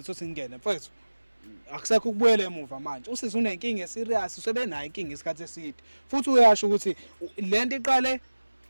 singene mfethu akusekho ukubuyela emuva manje usizwe unenkinga eserious usebenayo inkinga isikhathi eside futhi uyasho ukuthi lento iqale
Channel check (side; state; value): both; inverted; correlation -1.00